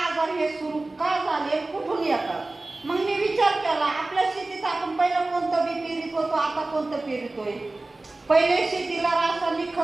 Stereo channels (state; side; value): quieter; left; 3.0 dB